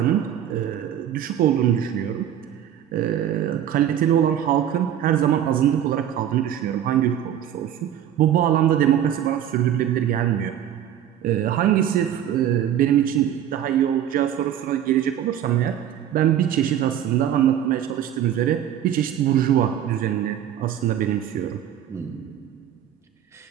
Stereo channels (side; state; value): left; quieter; 10.5 dB